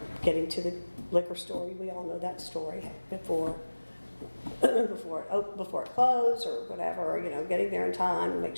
getting to the liquor store. We all know that story before it closed or whatever, getting there in time and make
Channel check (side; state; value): both; inverted; correlation -1.00